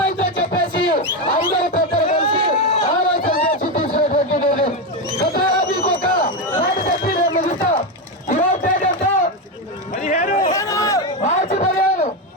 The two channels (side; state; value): both; normal; correlation 0.11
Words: చెప్పేసి అందరూ పెద్దలు కలిసి ఆలోచన చేసి తీసినటువంటి నిర్ణయం. గతంలో మీకు ఒక మాట చెప్పి నేను ముగిస్తా. ఈరోజు ఏంటంటే మార్చి